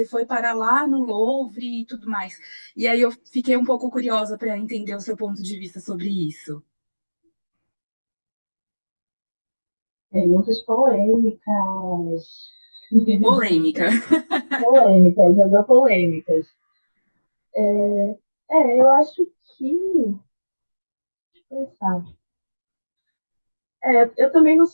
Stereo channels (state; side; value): inverted; both; correlation -1.00